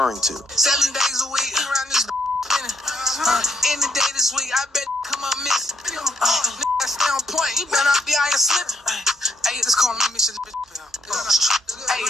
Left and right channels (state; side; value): normal; both; correlation 0.73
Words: to. 7 days a week around this any day this week, I bet come up miss. I stay on point. You better not be out here slipping. Hey, let's call me mission. Hey,